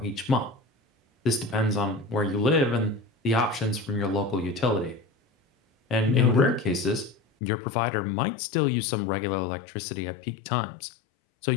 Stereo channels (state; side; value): drops out; right; at 7.2 s